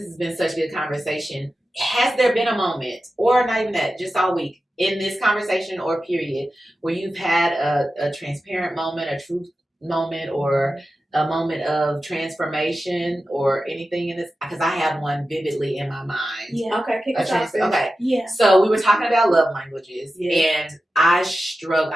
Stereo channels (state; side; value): normal; both; correlation 0.93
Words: has been such a good conversation. Has there been a moment, or not even that, just all week, in this conversation or period, where you've had a transparent moment, a truth moment, or a moment of transformation or anything in this? Because I have one vividly in my mind. Yeah. Okay, kick us off. Okay. Yeah. So we were talking about love languages, and I struggle.